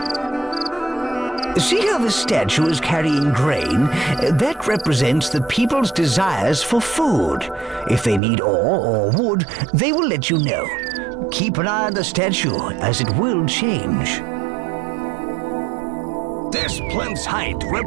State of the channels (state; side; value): drops out; left; at 8.2 s